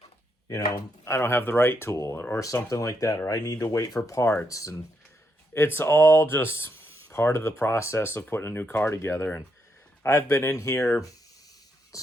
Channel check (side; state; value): both; normal; correlation 0.79